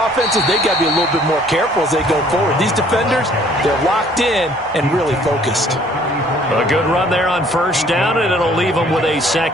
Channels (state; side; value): normal; both; correlation 0.58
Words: they got to be a little bit more careful as they go forward. These defenders, they're locked in and really focused. A good run there on first down, and it'll leave them with a